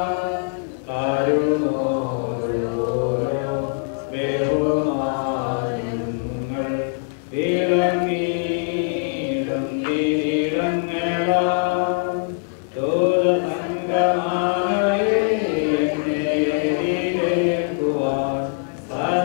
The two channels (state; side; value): silent; right; 64 dB below the other